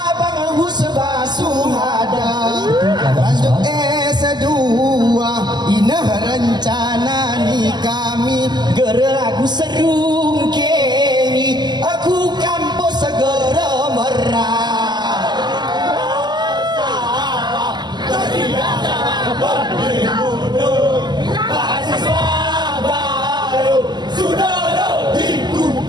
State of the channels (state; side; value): late; left; 0.21 ms